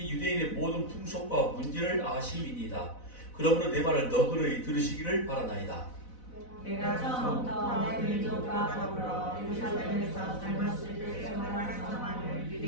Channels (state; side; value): late; right; 4.0 ms